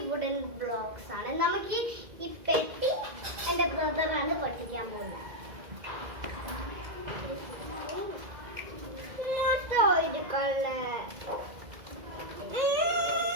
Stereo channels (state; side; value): late; left; 2.0 ms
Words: wooden blocks ആണ്. നമുക്ക് ഈ പെട്ടി എന്റെ ബ്രദറാണ് പഠിക്കാൻ പോകുന്നത്.